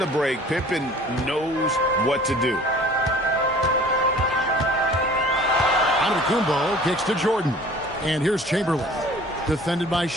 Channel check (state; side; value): normal; both; correlation 0.48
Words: break, Pippen knows what to do. Antetokounmpo kicks to Jordan. And here's Chamberlain. Defended by